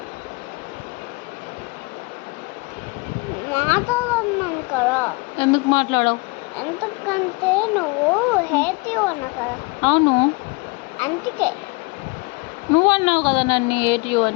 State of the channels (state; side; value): quieter; right; 28.2 dB